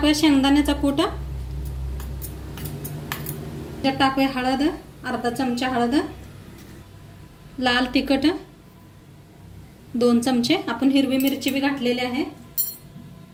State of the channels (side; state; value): both; identical; correlation 1.00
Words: शेंगदाण्याचा कूट, ह्याच्यात टाकूया हळद, अर्धा चमचा हळद, लाल तिखट 2 चमचे, आपण हिरवी मिरची बी घातलेली आहे,